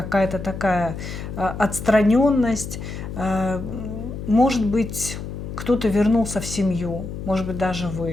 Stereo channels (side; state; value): left; noise; hum, 8 dB below the sound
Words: такая отстраненность. Может быть, кто-то вернулся в семью, может быть, даже